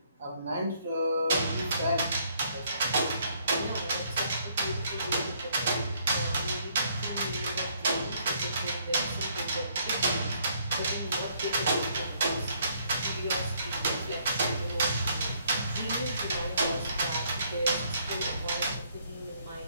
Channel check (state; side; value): inverted; both; correlation -0.67